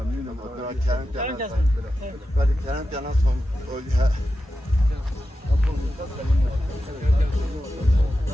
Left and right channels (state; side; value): normal; both; correlation 0.91